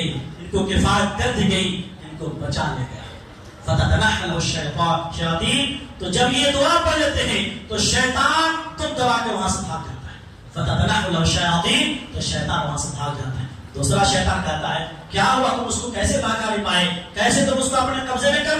ان کو کفایت کر دی گئی, ان کو بچا لیا گیا. فتتنحل الشیاطین. تو جب یہ دعا پڑھ لیتے ہیں تو شیطان تم دبا کے وہاں سے بھاگ جاتا ہے. فتتنحل الشیاطین, تو شیطان وہاں سے بھاگ جاتا ہے. دوسرا شیطان کہتا ہے کیا ہوا, تم اس کو کیسے بھاگا نہیں پائے, کیسے تم اس کو اپنے قبضے میں کر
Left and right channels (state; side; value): identical; both; correlation 1.00